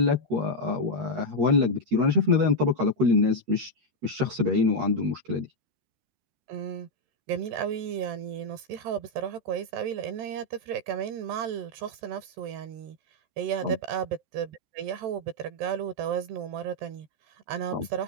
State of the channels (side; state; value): left; late; 13 ms